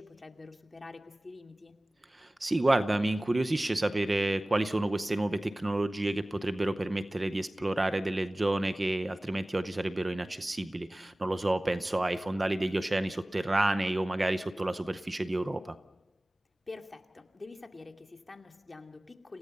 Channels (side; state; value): both; normal; correlation 0.98